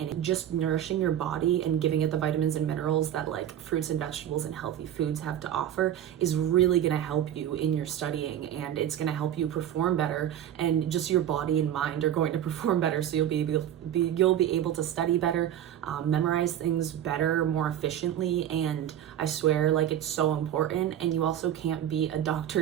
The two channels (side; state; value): left; quieter; 10.8 dB